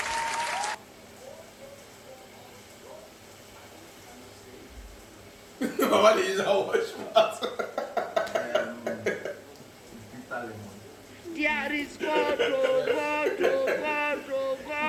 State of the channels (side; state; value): both; identical; correlation 1.00